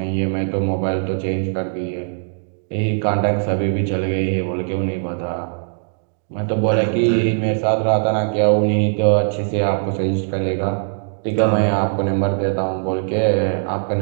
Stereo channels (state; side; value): silent; left; digital silence